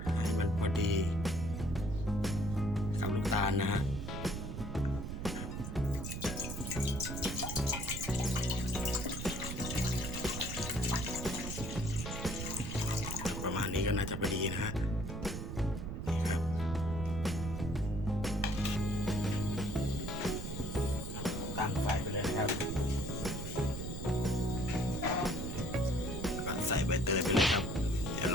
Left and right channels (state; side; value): noise; right; rumble, 5 dB below the sound